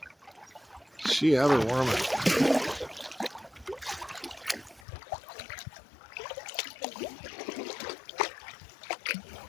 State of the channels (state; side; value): drops out; right; at 4.9 s